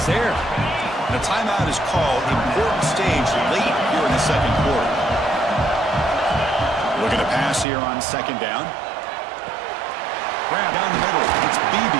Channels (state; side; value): drops out; left; at 7.7 s